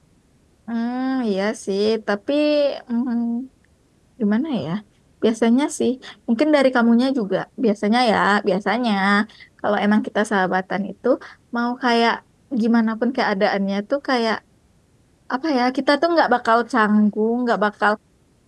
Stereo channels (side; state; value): both; identical; correlation 1.00